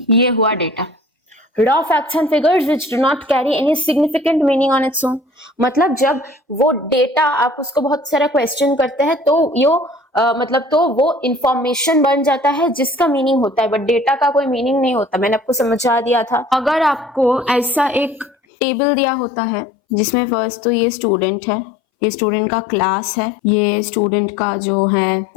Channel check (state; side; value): drops out; right; at 18.4 s